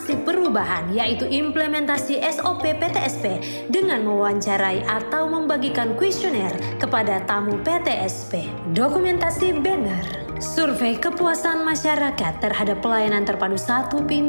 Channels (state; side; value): inverted; both; correlation -1.00